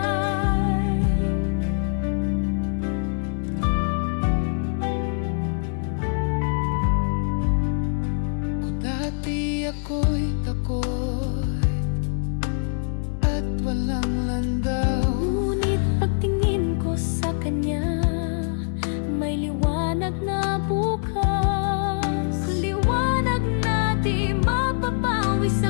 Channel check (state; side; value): silent; right; digital silence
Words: Kung dati ako'y takot at walang landaw, ngunit pagtingin ko sa Kanya, may liwanag na bukas. Liwanag na di mapapawi, sa